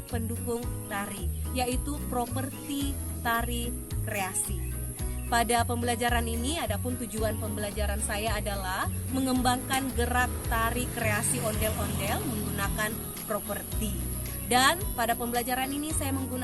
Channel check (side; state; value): both; identical; correlation 1.00